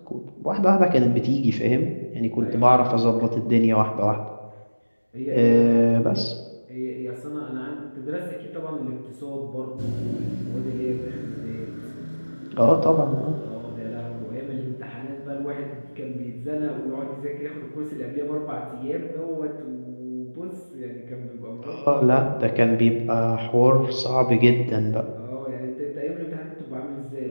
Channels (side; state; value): both; inverted; correlation -1.00